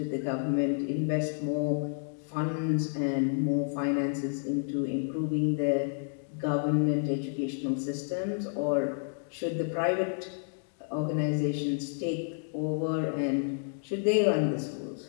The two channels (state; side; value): silent; right; digital silence